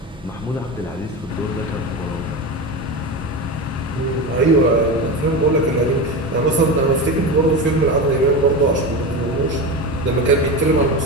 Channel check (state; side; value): normal; both; correlation 0.22